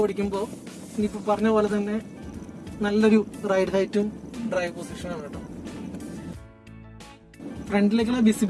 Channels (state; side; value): identical; both; correlation 1.00